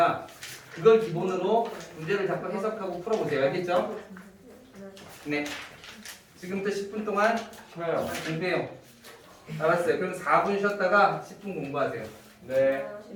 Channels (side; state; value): both; identical; correlation 1.00